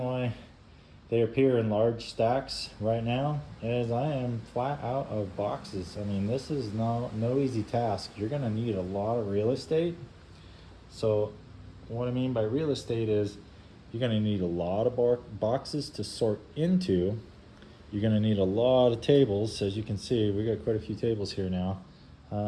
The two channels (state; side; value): identical; both; correlation 1.00